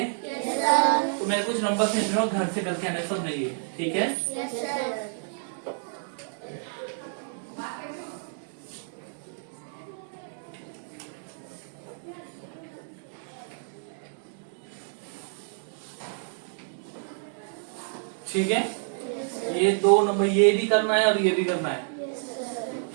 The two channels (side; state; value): left; silent; digital silence